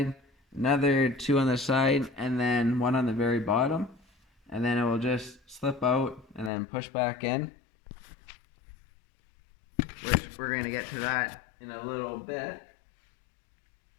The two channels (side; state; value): right; drops out; at 6.5 s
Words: another 2 on the side, and then 1 on the very bottom. And then it will just slip out and then push back in, which we're going to get to that in a little bit.